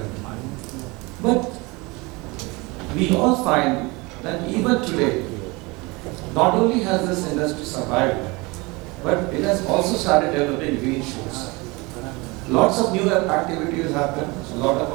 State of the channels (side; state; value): left; quieter; 25.1 dB